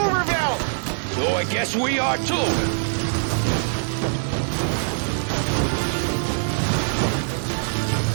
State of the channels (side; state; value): left; silent; digital silence